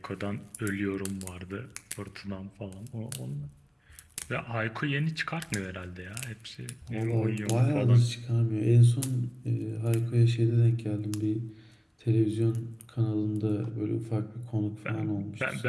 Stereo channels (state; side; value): identical; both; correlation 1.00